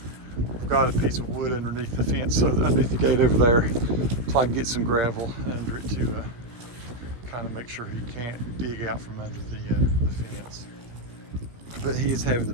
I've got a piece of wood underneath the fence, so underneath the gate over there, so I can get some gravel under it to kind of make sure he can't dig out from under the fence. But he is having the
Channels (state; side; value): late; left; 17 ms